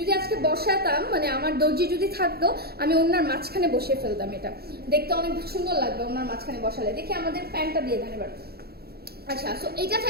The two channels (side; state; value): left; late; 0.46 ms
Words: আজকে বসাতাম, মানে আমার দর্জি যদি থাকতো, আমি ওড়নার মাঝখানে বসিয়ে ফেলতাম। এটা দেখতে অনেক সুন্দর লাগবে ওড়নার মাঝখানে বসালে। দেখি আমাদের প্যান্টটা দিয়ে দেন এবার। আচ্ছা, সো এটা